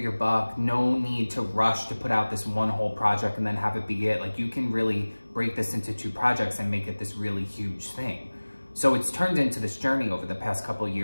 buck, no need to rush to put out this one whole project and then have it be it. Like, you can really break this into 2 projects and make it this really huge thing. So it's turned into this journey over the past couple of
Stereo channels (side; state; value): both; inverted; correlation -1.00